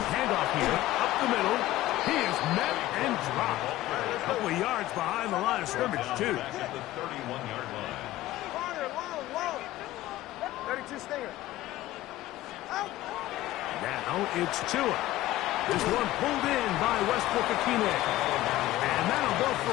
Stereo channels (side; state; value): right; quieter; 15.8 dB